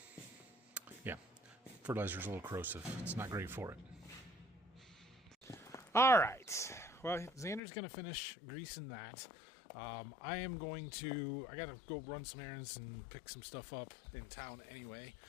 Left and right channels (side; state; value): right; drops out; at 7.6 s